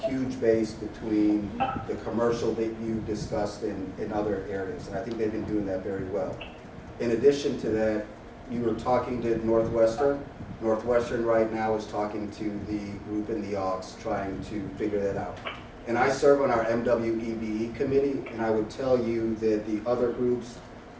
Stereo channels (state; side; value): identical; both; correlation 1.00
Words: huge base between the commercial that you discussed in other areas. And I think they've been doing that very well. In addition to that, you were talking to Northwestern. Northwestern right now is talking to the group in the Aux, trying to figure that out. And I serve on our MWEBE committee, and I would tell you that the other groups,